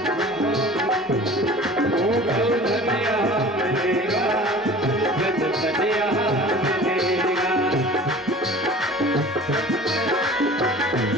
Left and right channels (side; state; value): both; normal; correlation 0.42